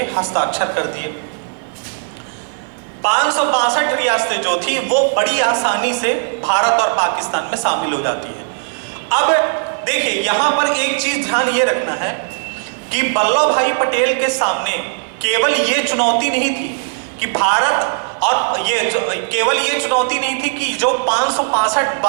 हस्ताक्षर कर दिए। 562 रियासतें जो थी वो बड़ी आसानी से भारत और पाकिस्तान में शामिल हो जाती है। अब देखिए यहां पर एक चीज ध्यान ये रखना है कि वल्लभ भाई पटेल के सामने केवल ये चुनौती नहीं थी कि भारत, और केवल ये चुनौती नहीं थी कि जो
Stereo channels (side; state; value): left; silent; digital silence